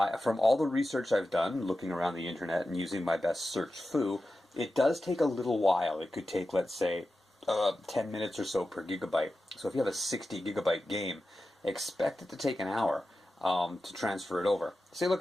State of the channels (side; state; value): both; normal; correlation 0.92